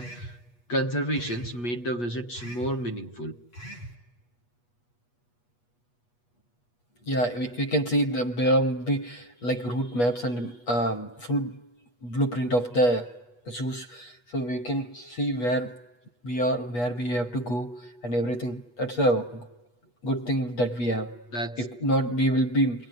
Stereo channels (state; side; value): late; right; 8.3 ms